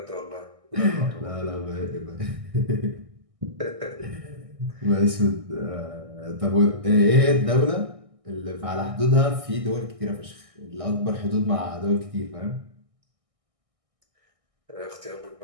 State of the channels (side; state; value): left; late; 1.6 ms